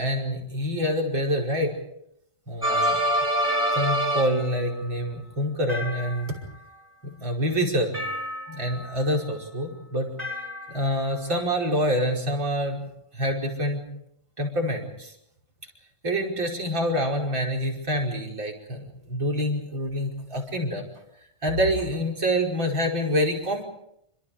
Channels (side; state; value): right; late; 1.5 ms